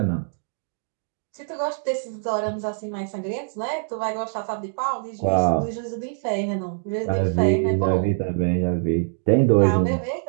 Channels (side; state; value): left; silent; digital silence